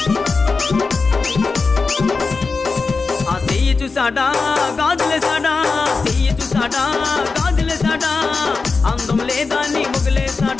చూసాడా గాజులేసాడా చెయ్యి చూసాడా గాజులేసాడా అందం లేదా నీ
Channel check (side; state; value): right; quieter; 4.3 dB